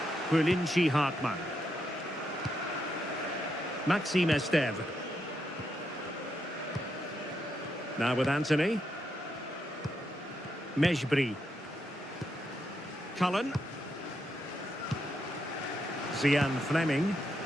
Bulinchi Hartmann. Maxime Esteve. Now with Anthony. Mejbri. Cullen. Zian Fleming.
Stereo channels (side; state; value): both; normal; correlation 0.81